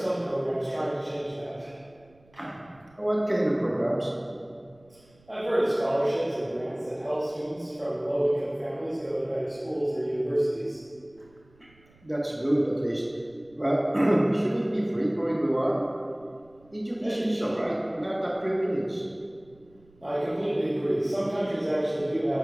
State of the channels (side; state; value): right; noise; rumble, 29 dB below the sound